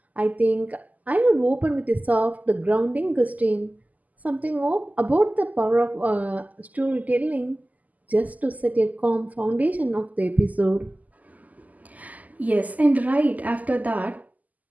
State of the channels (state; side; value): late; left; 0.078 ms